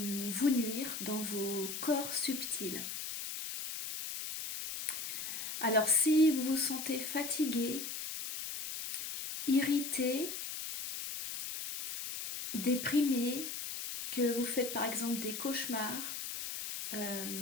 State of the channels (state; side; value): noise; left; hiss, 6 dB below the sound